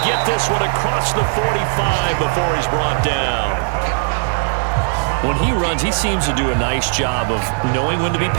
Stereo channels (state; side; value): silent; left; digital silence